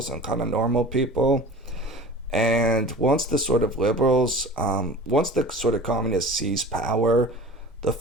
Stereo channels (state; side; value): normal; both; correlation 0.39